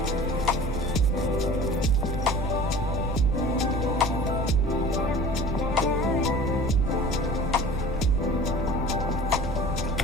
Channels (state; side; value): noise; left; rumble, 3 dB below the sound